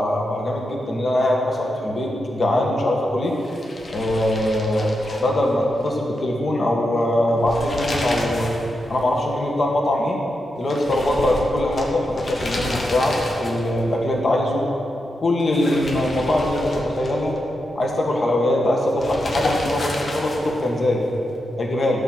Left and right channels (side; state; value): both; normal; correlation 0.86